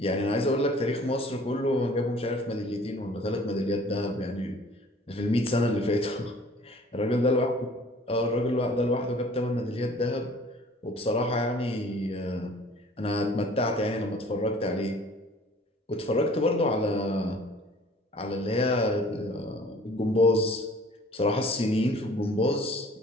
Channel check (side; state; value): both; normal; correlation 0.51